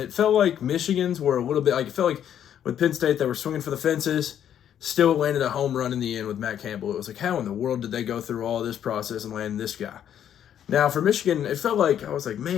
felt like Michigan's were a little bit, it felt like with Penn State, they were swinging for the fences, still landed a home run in the end with Matt Campbell. It was like, how in the world did they go through all this process and land this guy? Now, for Michigan, it felt like, I was like,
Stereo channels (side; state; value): right; quieter; 9.8 dB